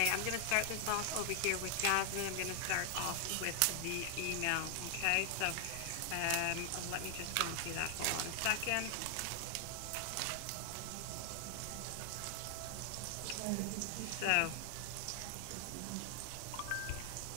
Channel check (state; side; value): different; both; correlation 0.00